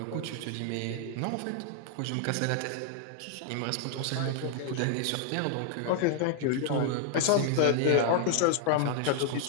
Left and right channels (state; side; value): different; both; correlation 0.00